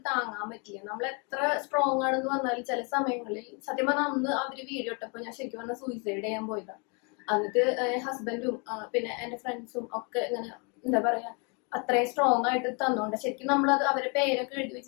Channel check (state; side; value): quieter; right; 34.2 dB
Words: താങ്ങാൻ പറ്റില്ല. നമ്മൾ എത്ര സ്ട്രോങ് ആണെന്ന് പറഞ്ഞാലും ചില സമയങ്ങളിൽ സത്യം പറഞ്ഞാൽ അന്ന് അവര് വീഡിയോ ഇട്ടപ്പോ ഞാൻ ശരിക്കും പറഞ്ഞാൽ സൂയിസൈഡ് ചെയ്യാൻ പോയതാണ്. എന്നിട്ട് ഹസ്ബൻഡും പിന്നെ എന്റെ ഫ്രണ്ട്സും ഒക്കെ ഇങ്ങനെ എന്താ പറയാ അത്രയും സ്ട്രോങ് ആയിട്ട് തന്നോണ്ട് ശരിക്കും നമ്മളത് അവരെ പേരൊക്കെ എഴുതി